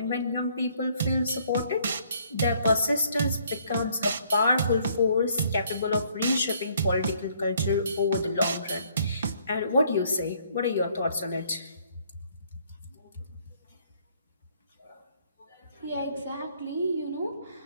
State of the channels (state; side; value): inverted; both; correlation -0.65